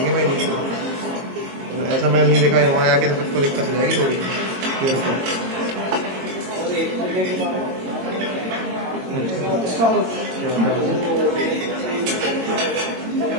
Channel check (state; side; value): late; left; 22 ms